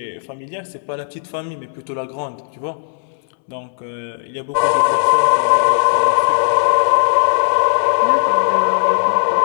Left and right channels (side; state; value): right; silent; 66 dB below the other